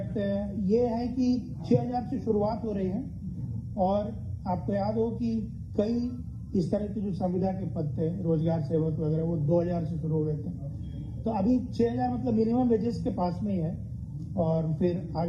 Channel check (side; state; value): both; identical; correlation 1.00